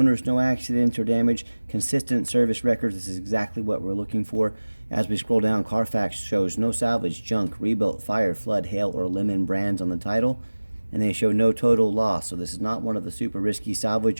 no accidents or damage, consistent service records. This is exactly what we're looking for. As we scroll down, Carfax shows no salvage, junk, rebuilt, fire, flood, hail, or lemon brands on the title. And they show no total loss. So this is not one of the super risky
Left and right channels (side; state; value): both; inverted; correlation -1.00